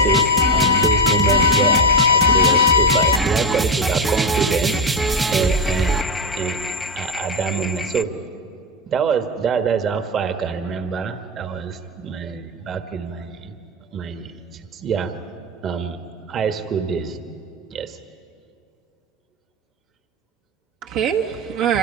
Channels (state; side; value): normal; both; correlation 0.11